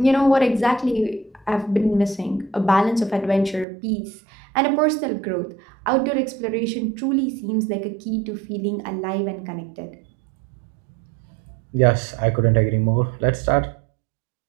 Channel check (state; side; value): drops out; left; at 3.7 s